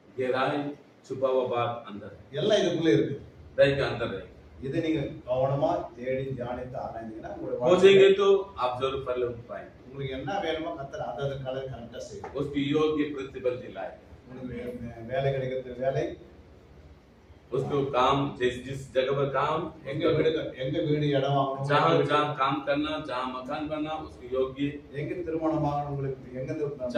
गहराई छुपा हुआ बात अंदर है, எல்லாம் இதுக்குள்ள இருக்கு. हृदय के अंदर है। இதை நீங்க கவனமா தேடி தியானித்து ஆராய்ந்தீங்கன்னா உங்களுடைய खोजेंगे तो आप जरूर फल पाएंगे। உங்களுக்கு என்ன வேணுமோ கர்த்தர் அதை கலர் கரெக்டா செய்யும். उसकी योग्य प्रतिफल दिलाए, உங்களுக்கு வேலை கிடைக்கிறது வேலை, उसको काम जिस जगह पर काम எங்க வீடு இடம் வாங்கணும், जहाँ जहाँ काम करना, जहाँ मकान बनना उसकी योग्य, எங்க திருமணம் வாங்கணும், உங்களுக்கு எங்க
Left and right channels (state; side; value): identical; both; correlation 1.00